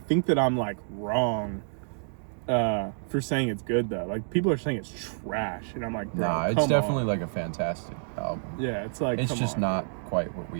that I'm like wrong for saying it's good though. Like people are saying it's trash, and I'm like, bro, nah, it's definitely like a fantastic album. Yeah, it's like it's just not quite what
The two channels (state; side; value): silent; left; digital silence